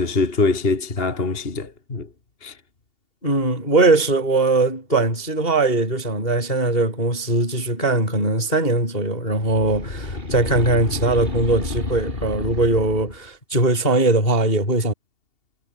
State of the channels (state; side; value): late; right; 2.7 ms